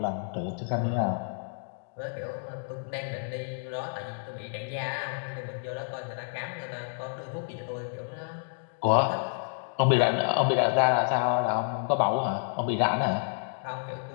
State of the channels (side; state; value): right; silent; digital silence